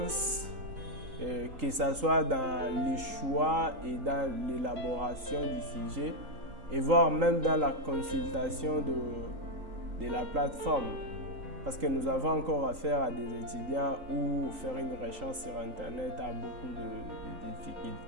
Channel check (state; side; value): late; left; 3.8 ms